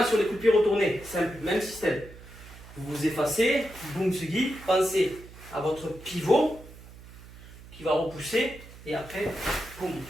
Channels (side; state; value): right; noise; hum, 18 dB below the sound